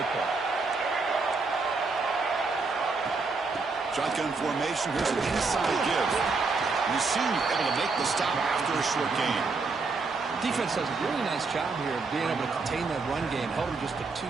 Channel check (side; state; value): left; quieter; 4.2 dB